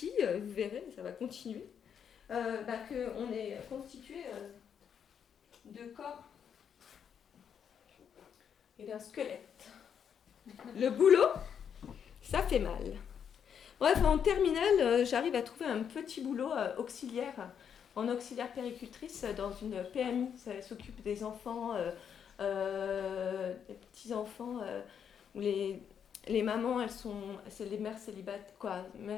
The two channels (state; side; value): quieter; right; 7.9 dB